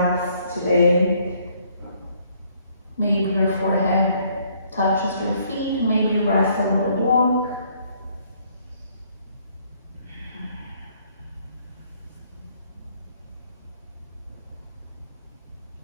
today. Maybe your forehead touches your feet. Maybe you rest a little more.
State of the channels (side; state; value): both; inverted; correlation -0.65